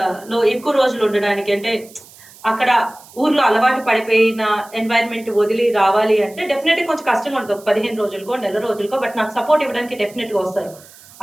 లో ఎక్కువ రోజులు ఉండడానికి, అంటే అక్కడ ఊర్లో అలవాటు పడిపోయిన ఎన్వైరన్మెంట్ వదిలి రావాలి అంటే డెఫినెట్గా కొంచెం కష్టంగా ఉంటుంది, 15 రోజులకో నెల రోజులకో. బట్ నాకు సపోర్ట్ ఇవ్వడానికి డెఫినెట్గా వస్తారు.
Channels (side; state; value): right; noise; hiss, 23 dB below the sound